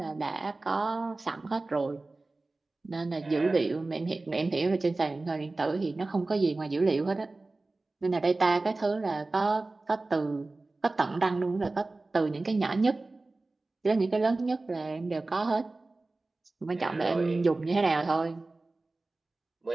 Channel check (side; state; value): left; quieter; 3.2 dB